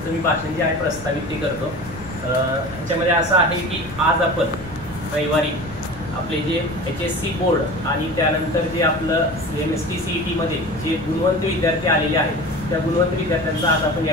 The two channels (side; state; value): left; noise; rumble, 16 dB below the sound